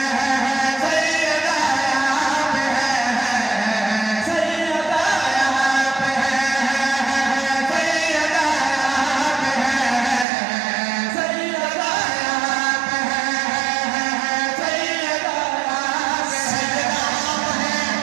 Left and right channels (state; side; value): drops out; left; at 10.2 s